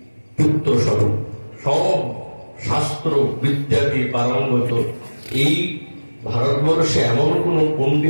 পুত্র স্বরূপ, সব শাস্ত্র বিদ্যাতে পারঙ্গত। এই ভারতবর্ষে এমন কোন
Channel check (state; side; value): inverted; both; correlation -1.00